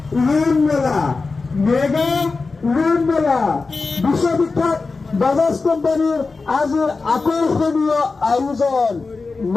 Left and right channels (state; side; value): quieter; right; 4.1 dB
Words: উন্নয়ন মেলা মেগা উন্নয়ন মেলা বিশ্ববিখ্যাত বাজাজ কোম্পানির আজের আকর্ষণীয় আয়োজন